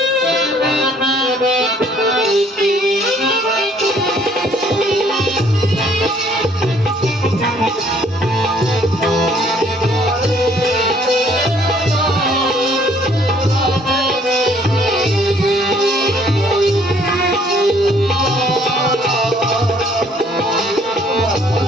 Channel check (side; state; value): both; normal; correlation 0.62